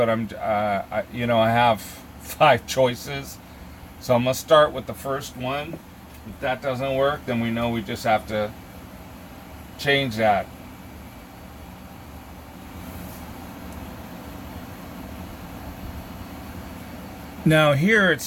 I have 5 choices. So I'm gonna start with the first one. If that doesn't work, then we know we just have to change that. Now here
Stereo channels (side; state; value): both; identical; correlation 1.00